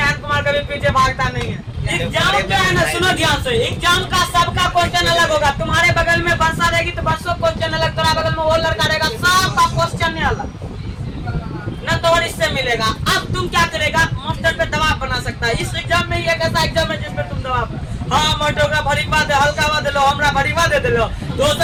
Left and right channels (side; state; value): both; identical; correlation 1.00